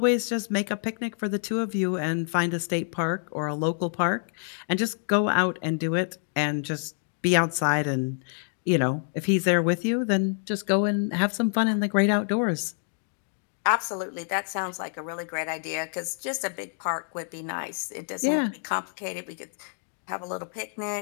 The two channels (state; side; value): silent; right; digital silence